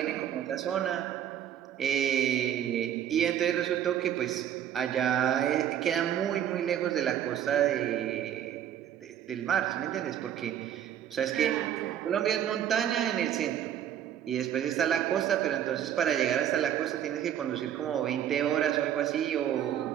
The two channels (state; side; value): quieter; left; 10.3 dB